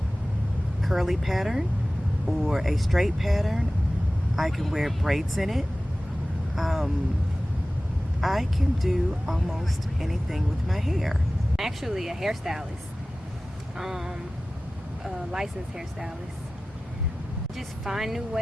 curly pattern or a straight pattern. I can wear braids in it. I can do almost anything with my hair. I'm actually a hairstylist, a licensed hairstylist. Just find new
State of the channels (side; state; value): both; normal; correlation 0.97